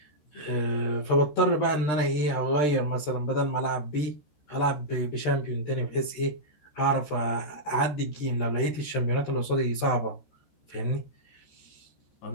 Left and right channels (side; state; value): right; late; 13 ms